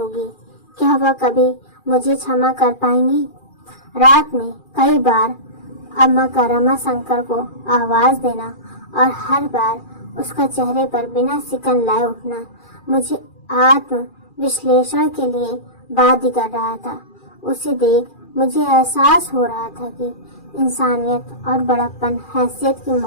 क्या वह कभी मुझे क्षमा कर पाएंगी? रात में कई बार अम्मा का रमाशंकर को आवाज देना और हर बार उसका चेहरे पर बिना सिकन लाए उठना मुझे आत्म विश्लेषण के लिए बाध्य कर रहा था। उसे देख मुझे एहसास हो रहा था कि इंसानियत और बड़प्पन हैसियत की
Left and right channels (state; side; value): late; right; 2.4 ms